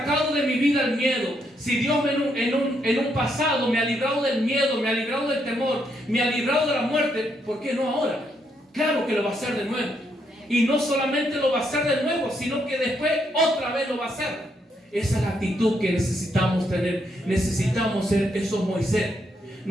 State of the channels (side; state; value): both; normal; correlation 0.76